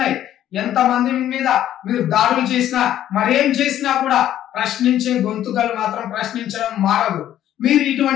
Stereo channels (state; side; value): quieter; right; 11.8 dB